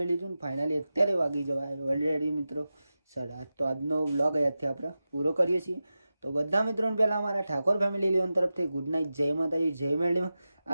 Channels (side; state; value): both; inverted; correlation -0.93